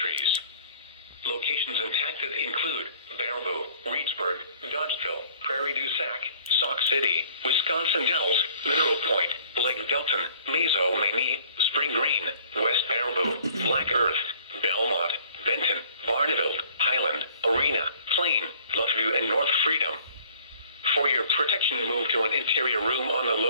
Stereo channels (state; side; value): inverted; both; correlation -0.56